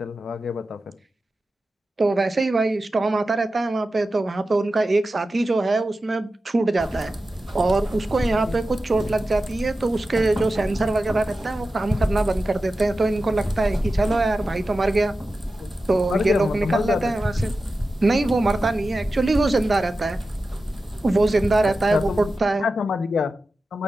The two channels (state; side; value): normal; both; correlation 0.93